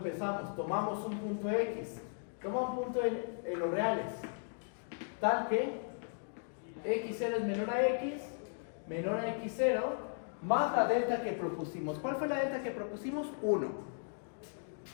Tomamos un punto x, toma un punto en los reales, tal que x0 es menor a x0, más la delta que propusimos. ¿Cuál fue la delta que propusimos? 1.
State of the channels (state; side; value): silent; right; digital silence